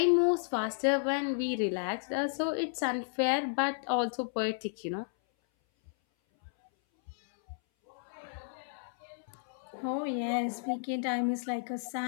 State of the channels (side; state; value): right; silent; 56 dB below the other